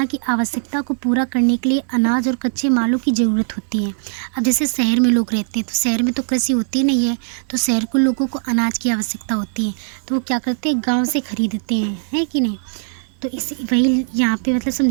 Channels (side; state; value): left; silent; digital silence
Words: की आवश्यकता को पूरा करने के लिए अनाज और कच्चे मालों की ज़रूरत होती है। अब जैसे शहर में लोग रहते हैं तो शहर में तो कृषि होती नहीं है, तो शहर के लोगों को अनाज की आवश्यकता होती है, तो वो क्या करते हैं गाँव से खरीदते हैं, है कि नहीं। तो इसी वही यहाँ पे मतलब